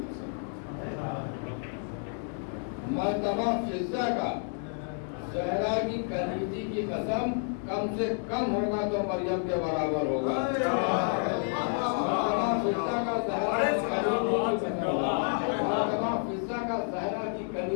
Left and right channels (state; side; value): silent; right; 57 dB below the other